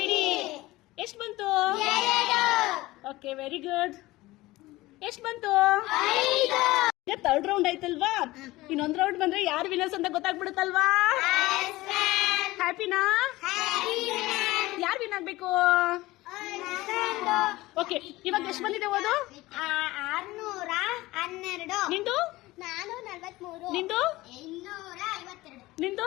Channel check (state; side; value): quieter; right; 19.0 dB